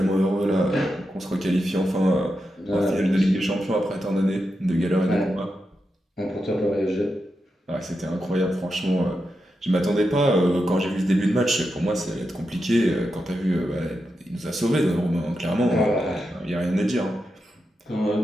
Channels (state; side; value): normal; both; correlation 0.87